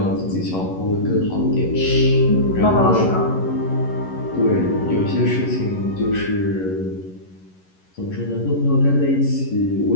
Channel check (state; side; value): late; right; 11 ms